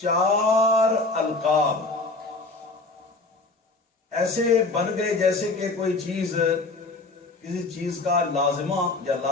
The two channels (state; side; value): quieter; right; 3.4 dB